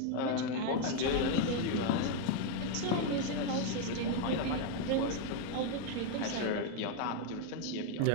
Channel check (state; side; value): different; both; correlation 0.01